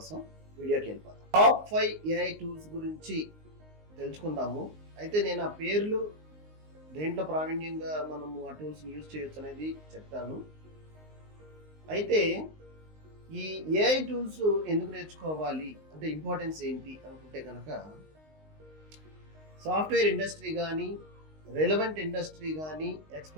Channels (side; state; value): left; late; 19 ms